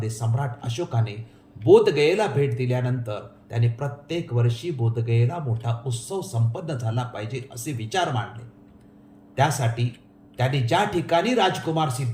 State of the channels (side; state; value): both; identical; correlation 1.00